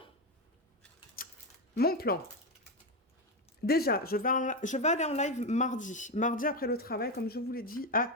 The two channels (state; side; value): normal; both; correlation 0.10